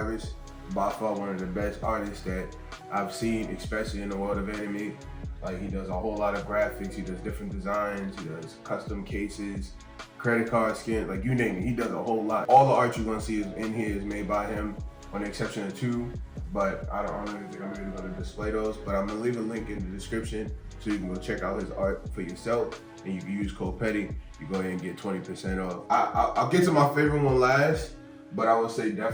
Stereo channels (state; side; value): identical; both; correlation 1.00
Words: By far one of the best artists that I've seen, especially in the world of anime. Like, he does a whole lot of graphics, he does different designs, he does custom cases, credit card skin, like you name it, he does a whole lot. All the art you're gonna see in here is made by him, on the exception of two, but I don't really think I'm really gonna display those, but I'm gonna leave a link in the description so you can go check out his art for yourself, and you can use code PETTY, you go ahead and get 20% off. I'll get to my favorite one last, but I would say